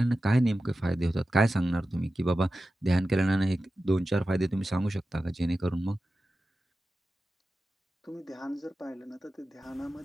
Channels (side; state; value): both; normal; correlation 0.93